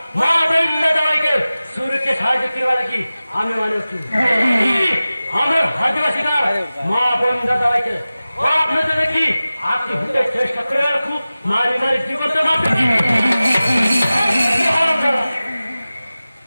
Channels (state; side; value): inverted; both; correlation -0.96